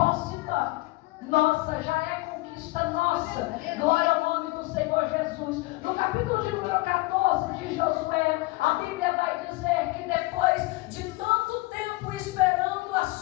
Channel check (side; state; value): right; quieter; 22.2 dB